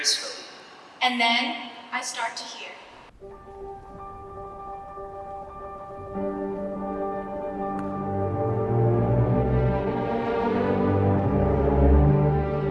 And then I start to hear.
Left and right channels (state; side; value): identical; both; correlation 1.00